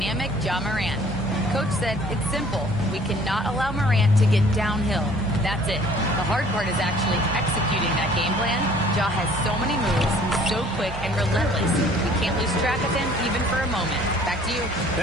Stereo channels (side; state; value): both; normal; correlation 0.54